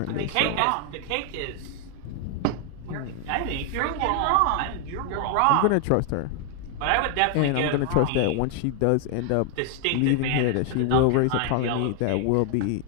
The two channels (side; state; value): both; different; correlation 0.00